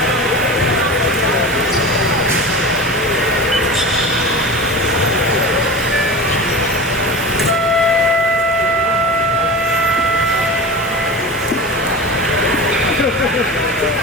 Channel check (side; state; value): both; normal; correlation 0.30